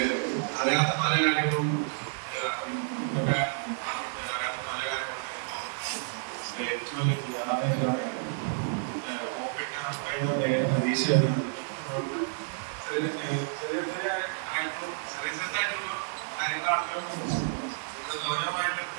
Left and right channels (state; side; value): silent; left; digital silence